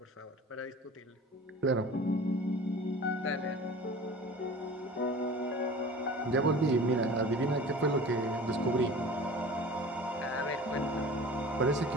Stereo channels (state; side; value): normal; both; correlation 0.40